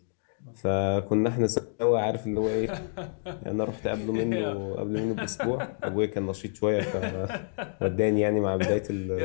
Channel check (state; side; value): silent; right; digital silence